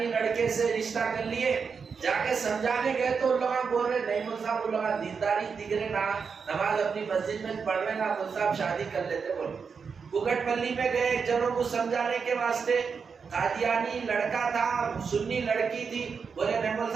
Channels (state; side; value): quieter; left; 5.7 dB